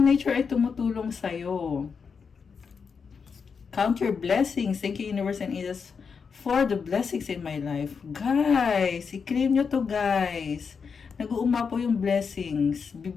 nature ay tumutulong sa'yo. Count your blessings. Thank you, universe and angels, for the blessings in my life. Guys, i-claim nyo to, guys. Nag-uuma po yung blessings.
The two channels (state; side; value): quieter; right; 5.8 dB